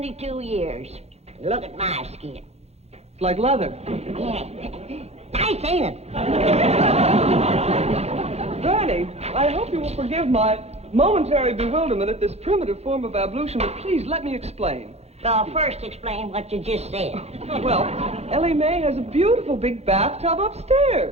years. Look at my skin. It's like leather. Yeah. Nice, ain't it? Granny, I hope you will forgive my momentary bewilderment at this primitive form of ablution, but please let me explain. Well, first explain what you just said. Well, Ellie Mae has a beautiful big bathtub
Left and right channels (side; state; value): left; late; 0.31 ms